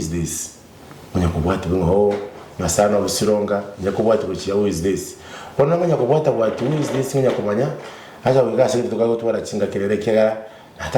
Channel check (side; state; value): both; identical; correlation 1.00